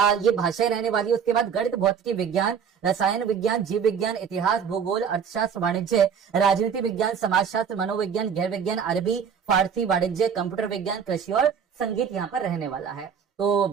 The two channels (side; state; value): left; quieter; 7.2 dB